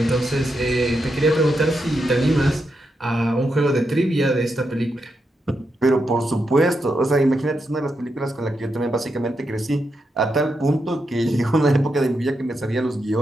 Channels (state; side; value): normal; both; correlation 0.84